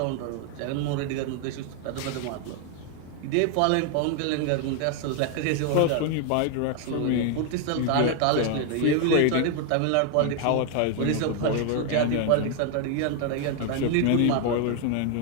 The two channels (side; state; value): both; different; correlation 0.01